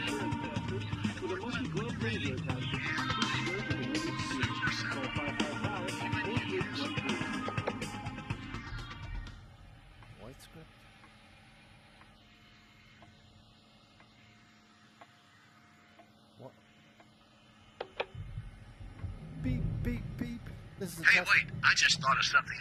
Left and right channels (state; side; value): identical; both; correlation 1.00